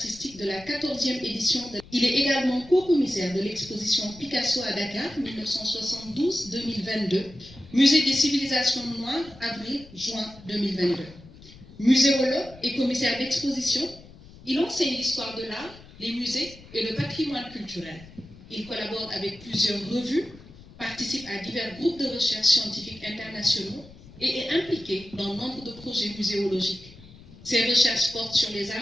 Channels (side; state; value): left; noise; rumble, 20 dB below the sound